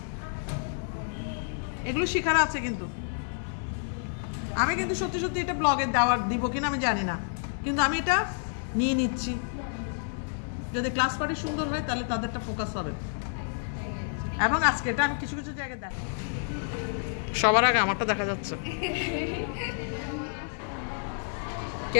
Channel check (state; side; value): silent; right; 58 dB below the other